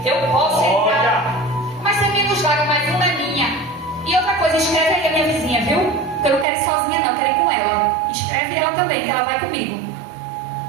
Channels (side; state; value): left; drops out; at 6.5 s